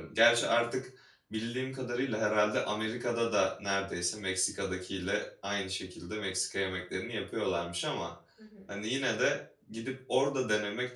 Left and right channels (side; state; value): both; identical; correlation 1.00